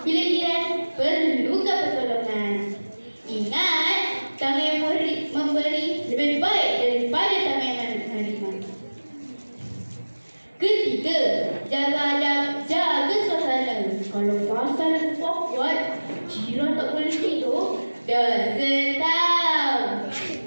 bila jiran perlukan pertolongan. Ingat, tamu yang memberi lebih baik daripada tamu yang menerima. Ketiga, jaga adab, jaga suasana. Kalau pasal awkward, jiran tak boleh tidur, dah tahu.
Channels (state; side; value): inverted; both; correlation -1.00